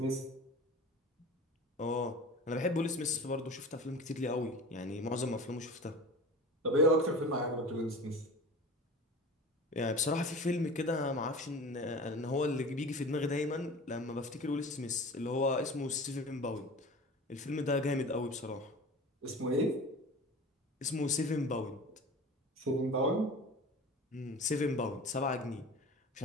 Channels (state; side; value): normal; both; correlation 0.36